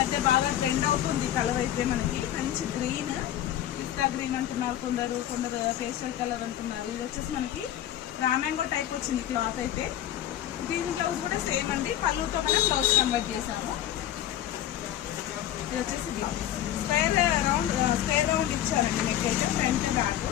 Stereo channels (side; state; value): right; quieter; 12.0 dB